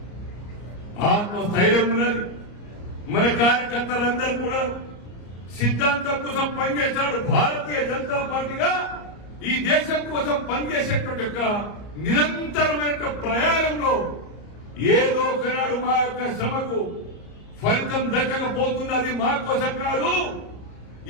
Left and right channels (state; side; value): late; right; 34 ms